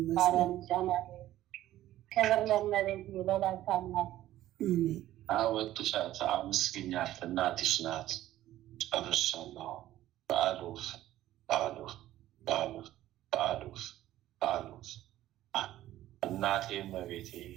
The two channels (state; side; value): quieter; left; 14.1 dB